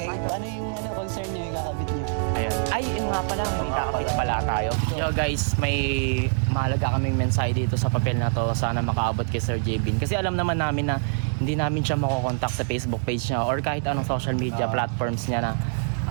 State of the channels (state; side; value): silent; left; digital silence